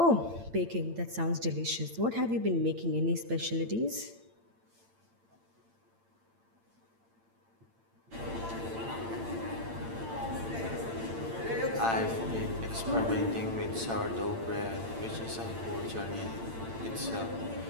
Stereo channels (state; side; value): late; left; 8.8 ms